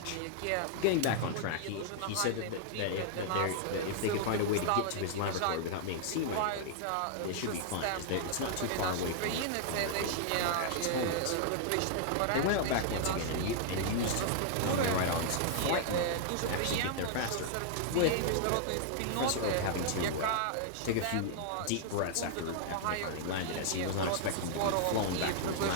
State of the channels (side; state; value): both; different; correlation -0.01